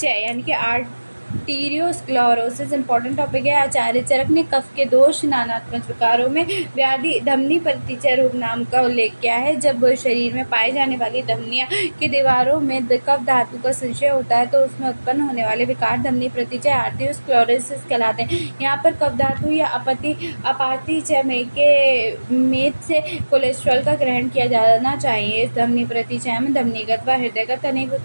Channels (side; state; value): both; inverted; correlation -1.00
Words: यानी कि आर्टीरियोस्क्लेरोसिस इंपॉर्टेंट टॉपिक है। आचार्य चरक ने कफ के दोष नानात्मक प्रकारों में व्याधि धमनी प्रतिचय रोग नाम का उल्लेख किया है। जब शरीर में पाई जाने वाली धमनियों की दीवारों में कफ धातु का संचय होता है तो उसमें उत्पन्न होने वाले विकार धमनी प्रतिचय आर्टीरियोस्क्लेरोसिस कहलाते हैं। यहाँ पर कफ धातु या अपातिचय में से कोलेस्ट्रॉल का ग्रहण किया जाना चाहिए। इस धमनी प्रतिचय में धमनीगत व हृदयगत अनेक